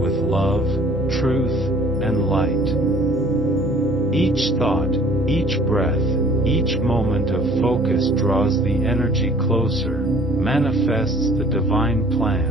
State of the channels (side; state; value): both; normal; correlation 0.53